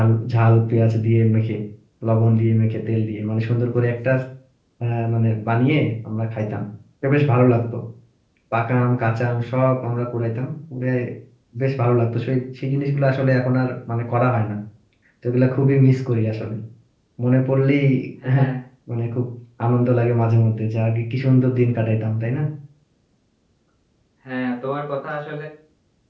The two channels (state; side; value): identical; both; correlation 1.00